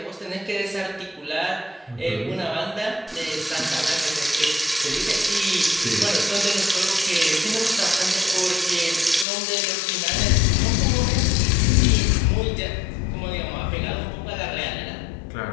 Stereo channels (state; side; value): drops out; right; at 9.2 s